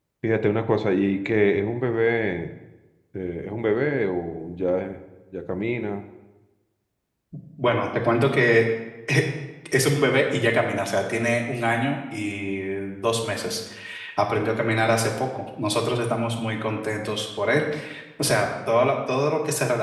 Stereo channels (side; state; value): both; identical; correlation 1.00